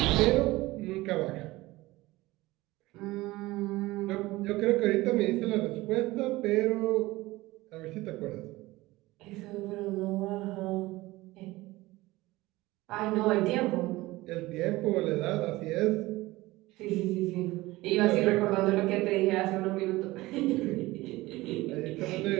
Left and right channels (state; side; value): quieter; left; 19.3 dB